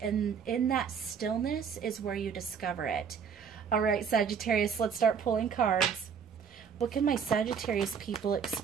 and in that stillness is where you discover it. All right, Sagittarius, let's start pulling cards. What can my Sagittarius people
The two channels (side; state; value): left; quieter; 6.8 dB